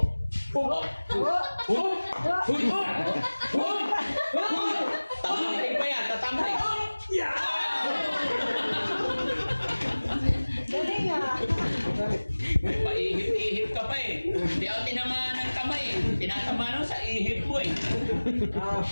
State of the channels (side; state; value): both; inverted; correlation -1.00